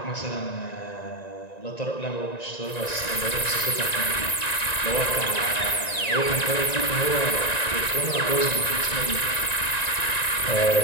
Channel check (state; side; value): late; right; 1.9 ms